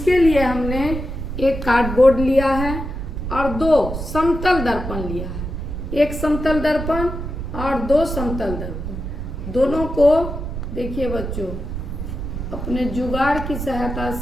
लिए हमने एक कार्डबोर्ड लिया है और दो समतल दर्पण लिया है। एक समतल दर्पण और दो समतल दर्पण, दोनों को देखिए बच्चों, अपने जुगाड़ की सहायता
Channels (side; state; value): right; noise; rumble, 5 dB below the sound